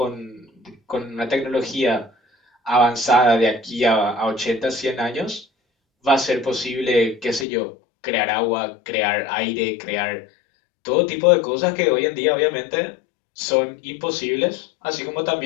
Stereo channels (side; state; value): right; drops out; at 7.5 s